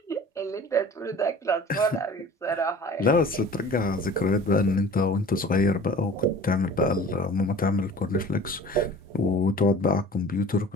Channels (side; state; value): both; normal; correlation 0.44